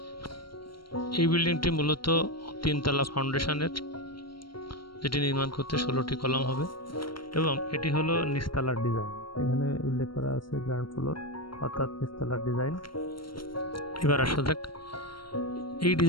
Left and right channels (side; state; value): right; late; 0.73 ms